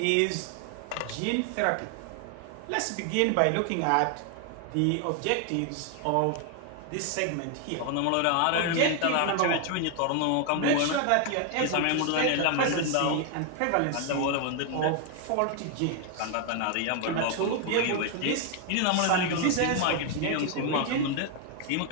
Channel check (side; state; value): both; different; correlation 0.00